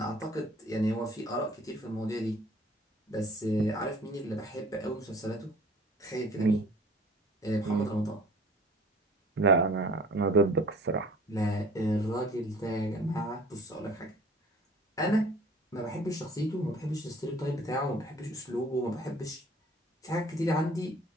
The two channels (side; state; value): both; normal; correlation 0.50